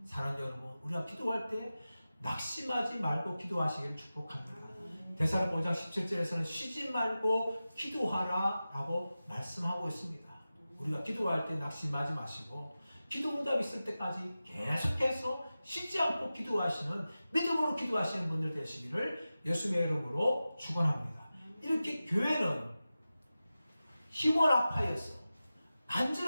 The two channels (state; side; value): inverted; both; correlation -0.95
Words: 사랑하는 여러분, 우리가 기도할 때 낙심하지 말고 기도하시기를 축복합니다. 데살로니가 5장 17절에서는 쉬지 말고 기도하라 라고 말씀하고 있습니다. 우리가 기도할 때 낙심하지 마시고 기도 응답이 있을 때까지 계속해서 쉬지 않고 기도하시는, 믿음으로 기도하시는 분들 되시기를 예수님의 이름으로 축원합니다. 이렇게 교회는 힘을 합하여서